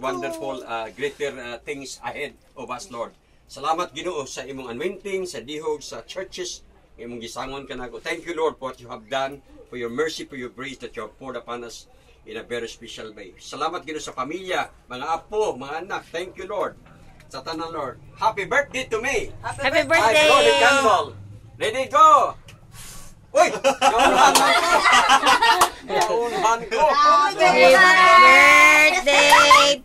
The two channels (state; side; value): identical; both; correlation 1.00